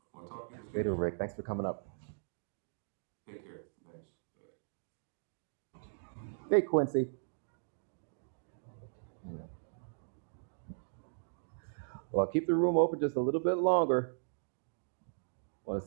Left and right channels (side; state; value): left; silent; digital silence